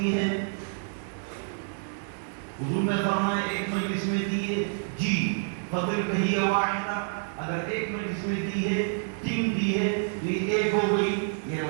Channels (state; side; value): silent; left; digital silence